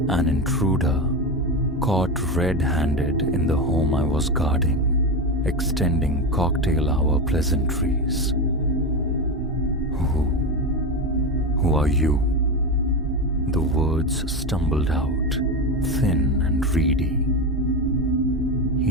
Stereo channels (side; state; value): both; normal; correlation 0.17